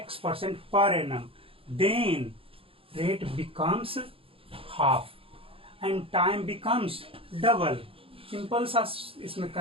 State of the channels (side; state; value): left; late; 0.27 ms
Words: per annum, then rate becomes half and time becomes double. Simple सा इसमें